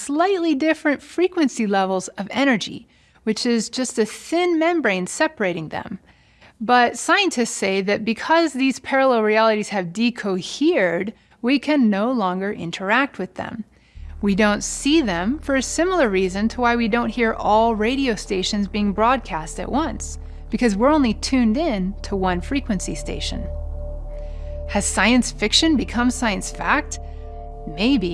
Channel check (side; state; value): both; identical; correlation 1.00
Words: different frequency levels of energy, which is just a thin membrane separating them. But scientists say that because these parallel realities have decohered, we can no longer interact with them. We don't see them for a similar reason to why we don't hear all radio stations being broadcast at once, because we're only tuned in to one frequency station. Has science fiction become science fact?